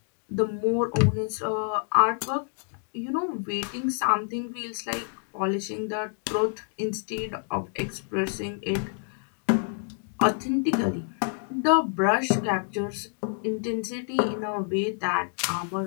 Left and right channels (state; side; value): silent; right; 57 dB below the other